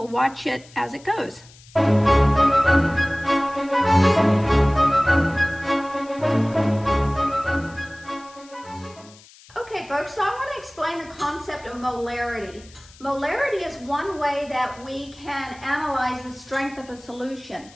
watch it as it goes. Okay folks, so I want to explain the concept of molarity. Molarity is one way that we can analyze the strength of a solution.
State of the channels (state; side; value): noise; left; hiss, 24 dB below the sound